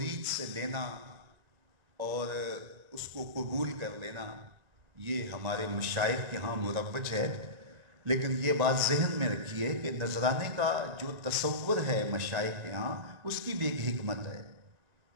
سے لینا اور اس کو قبول کر لینا یہ ہمارے مشائخ کے ہاں مروج ہے، لیکن یہ بات ذہن میں رکھیے کہ نذرانے کا جو تصور ہے مشائخ کے ہاں، اس کی بھی ایک حکمت ہے۔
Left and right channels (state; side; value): late; left; 1.9 ms